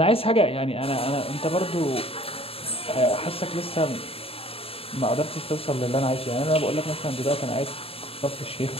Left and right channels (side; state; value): right; late; 0.28 ms